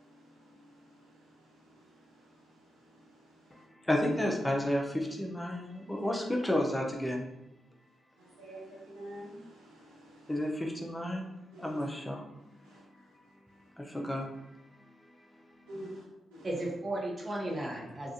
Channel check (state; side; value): normal; both; correlation 0.90